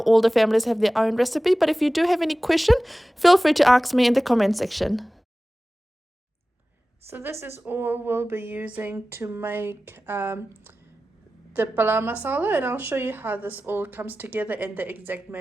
the families have their own recipe, but if you do have any question, feel free to ask me in the comment section. So this is all we'll be using to make the Palau Masala, and I'll show you how this all comes together and the exact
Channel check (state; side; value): normal; both; correlation 0.96